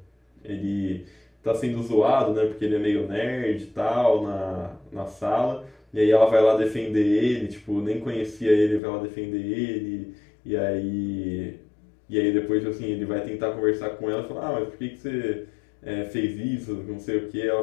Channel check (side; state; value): right; drops out; at 8.8 s